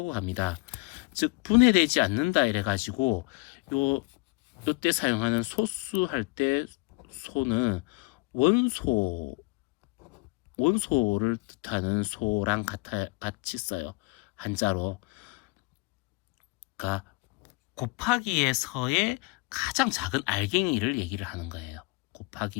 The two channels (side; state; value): right; quieter; 25.8 dB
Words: 합니다. 즉 분해되지 않는다 이래가지고 요때 사용하는 소수할 때 소는 원소를 뜻하는 소랑 같이 써요. 한자로. 그러니까 곱하기에서의 가장 작은 알갱이를 얘기를 하는 거예요.